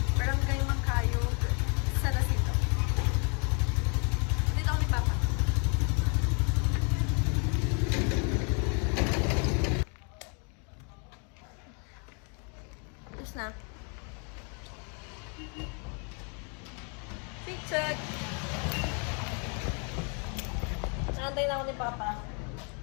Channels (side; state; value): right; quieter; 37.5 dB